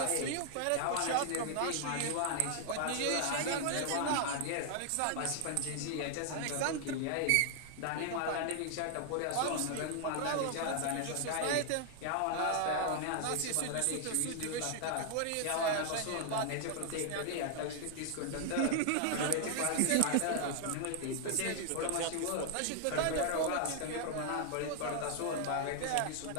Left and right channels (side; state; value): both; different; correlation 0.00